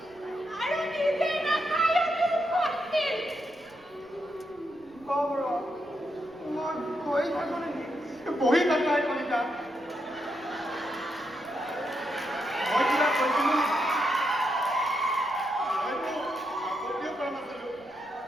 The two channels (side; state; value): right; noise; rumble, 29 dB below the sound